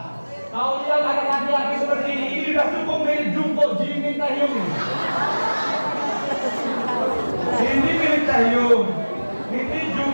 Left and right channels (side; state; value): both; inverted; correlation -1.00